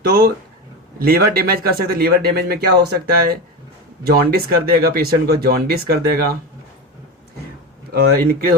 तो लीवर डैमेज कर सकते, लीवर डैमेज में क्या हो सकता है, जॉन्डिस कर देगा पेशेंट को, जॉन्डिस कर देगा,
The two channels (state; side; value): normal; both; correlation 0.22